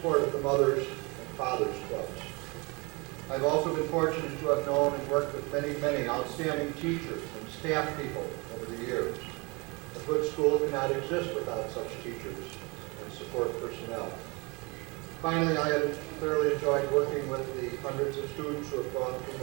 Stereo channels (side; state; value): left; quieter; 27.8 dB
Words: of the Mothers and Fathers Clubs. I've also been fortunate to have known and worked with many, many outstanding teachers and staff people over the years. A good school cannot exist without such teachers and support personnel. Finally, I have thoroughly enjoyed working with the hundreds of students who have gone